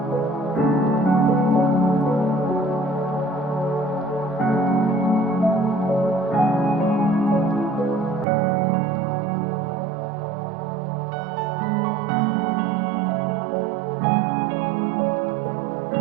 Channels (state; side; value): drops out; left; at 8.2 s